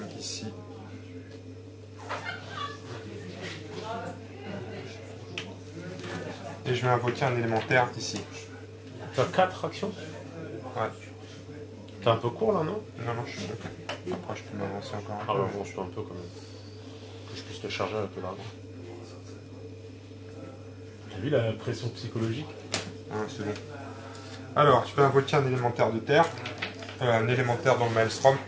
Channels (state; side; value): identical; both; correlation 1.00